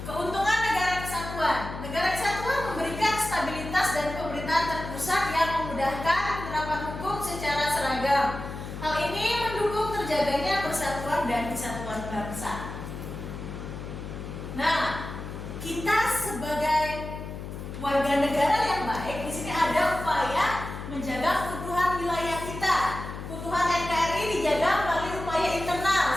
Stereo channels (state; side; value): noise; left; hum, 9 dB below the sound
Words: Keuntungan negara kesatuan. Negara kesatuan memberikan stabilitas dan pemerintahan terpusat yang memudahkan penerapan hukum secara seragam. Hal ini mendukung terjaganya persatuan dan kesatuan bangsa. Nah, kita sebagai warga negara yang baik, di sini ada upaya menjaga keutuhan wilayah kita. Keutuhan NKRI dijaga melalui upaya internal